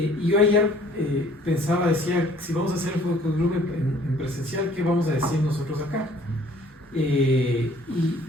yo ayer decía, si vamos a hacer el focus group en presencial, ¿qué vamos a decir nosotros acá? Y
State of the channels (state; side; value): normal; both; correlation 0.56